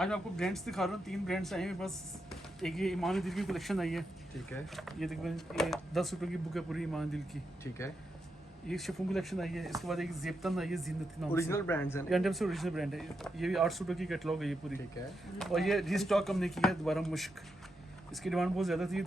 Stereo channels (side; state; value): both; normal; correlation 0.84